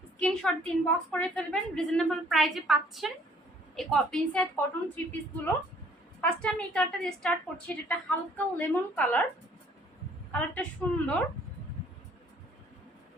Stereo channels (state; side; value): normal; both; correlation 0.59